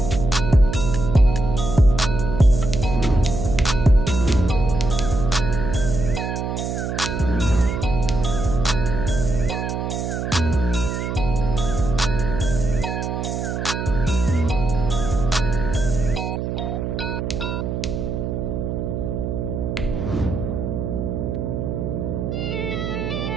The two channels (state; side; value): noise; right; hum, 3 dB below the sound